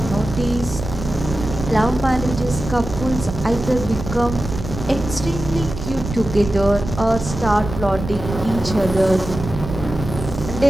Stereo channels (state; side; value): noise; right; rumble, 8 dB below the sound